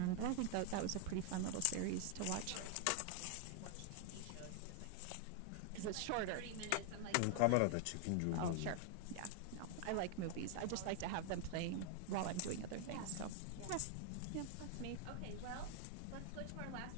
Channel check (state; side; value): different; both; correlation 0.00